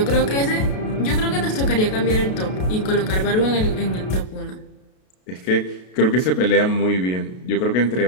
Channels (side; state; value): right; late; 32 ms